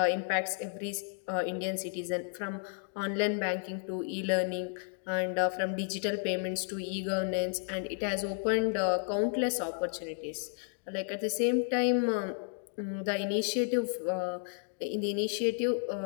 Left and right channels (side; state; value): right; silent; 56 dB below the other